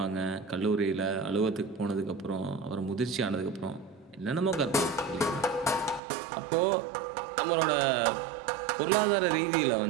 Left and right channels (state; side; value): drops out; left; at 6.0 s